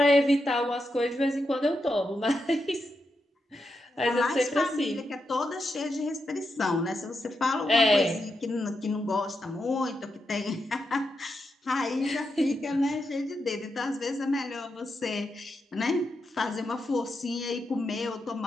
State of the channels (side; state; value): both; normal; correlation 0.85